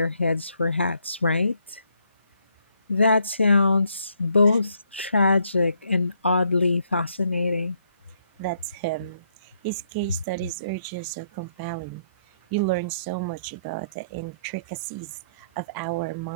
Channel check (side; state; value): both; inverted; correlation -0.72